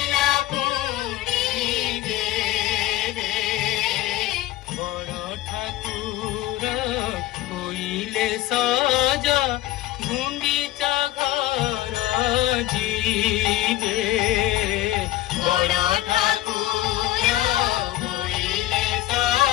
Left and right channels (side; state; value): right; quieter; 15.9 dB